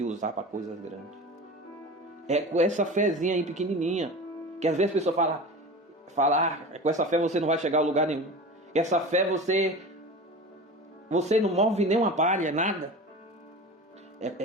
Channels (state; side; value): normal; both; correlation 0.33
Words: usar para coisas grandes. É com essa fezinha aí pequenininha, que às vezes a pessoa fala, com essa fé você não vai chegar a lugar nenhum. Essa fé você não move nem uma palha, nada.